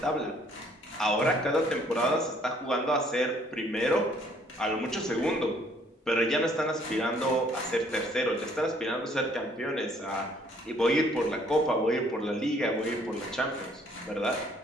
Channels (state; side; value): normal; both; correlation 0.62